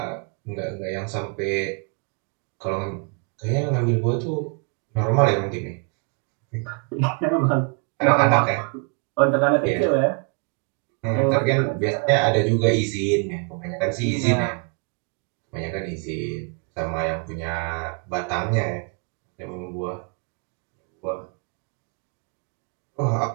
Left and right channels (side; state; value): left; quieter; 37.7 dB